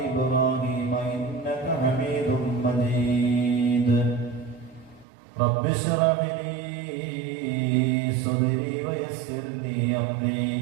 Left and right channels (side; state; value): left; drops out; at 5.1 s